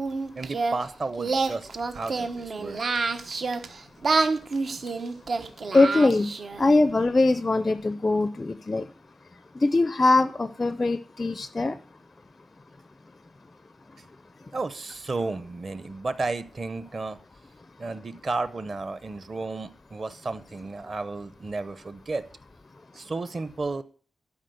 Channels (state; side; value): normal; both; correlation 0.93